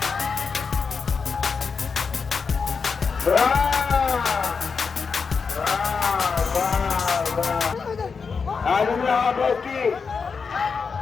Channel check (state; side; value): quieter; right; 5.4 dB